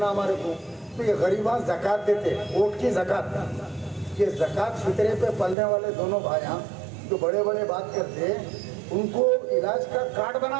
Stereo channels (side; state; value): left; drops out; at 5.6 s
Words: हमारे को, तो ये गरीबा ज़कात देते, वोट की ज़कात। ये ज़कात फितरे पे पलने वाले दोनों भाइयाँ जो बड़े बड़े बात करते, उनको इलाज का कार्ड